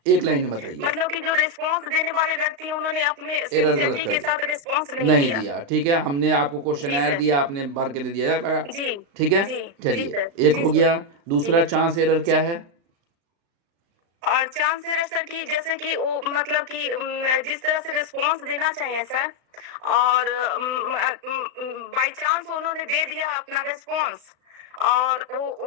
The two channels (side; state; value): left; late; 35 ms